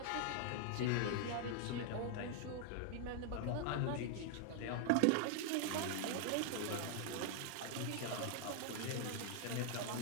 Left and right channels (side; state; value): both; different; correlation 0.00